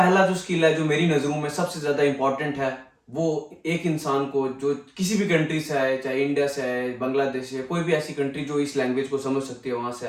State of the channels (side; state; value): both; identical; correlation 1.00